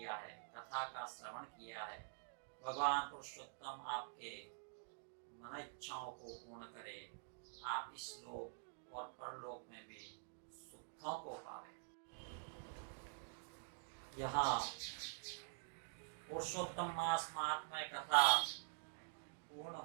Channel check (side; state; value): left; silent; digital silence